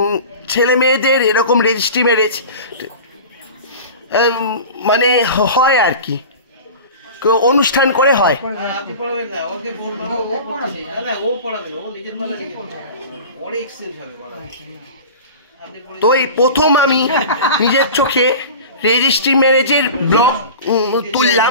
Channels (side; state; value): both; inverted; correlation -0.35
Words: ছেলে মেয়েদের এরকম রেজিস্ট্রি ম্যারেজ মানে হয় আর কি, অনুষ্ঠান করে হয়। তো এই প্রথম আমি নিজের চোখে রেজিস্ট্রি ম্যারেজের ব্লগ